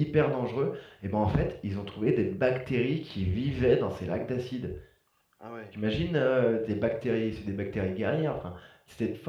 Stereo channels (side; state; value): both; identical; correlation 1.00